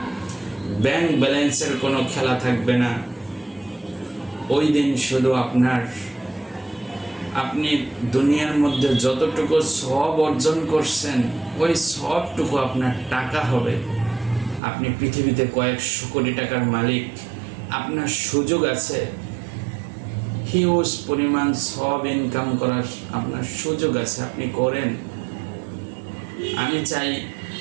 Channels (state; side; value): drops out; left; at 14.6 s